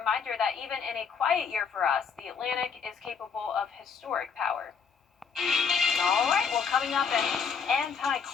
that even in a quiet year for us, the Atlantic is capable of historic power. All right, well, coming up, an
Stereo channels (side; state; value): right; quieter; 6.1 dB